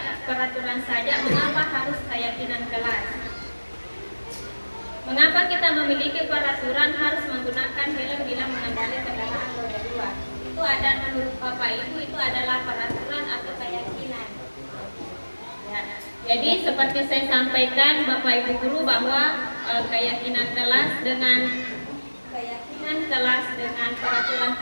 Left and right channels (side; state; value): both; inverted; correlation -1.00